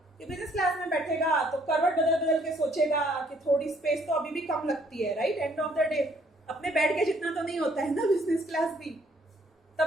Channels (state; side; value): normal; both; correlation 0.64